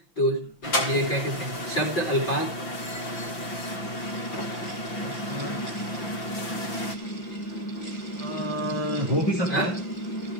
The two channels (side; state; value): right; late; 5.9 ms